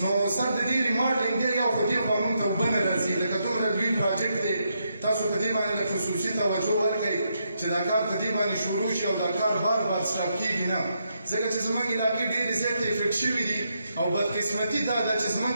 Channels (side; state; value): both; inverted; correlation -0.80